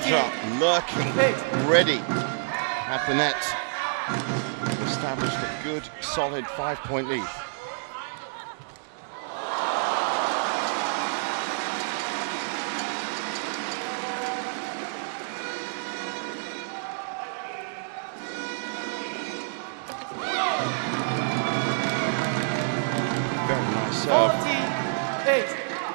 lurking, ready at the net. Established a good, solid 5-point lead. Very nice serve. 48.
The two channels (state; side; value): silent; left; digital silence